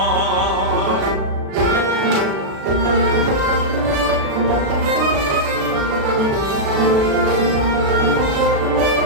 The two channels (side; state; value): left; late; 36 ms